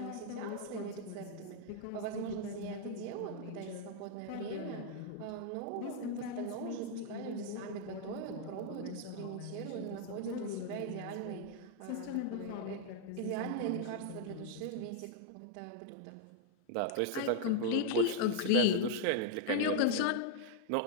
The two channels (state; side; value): different; both; correlation 0.00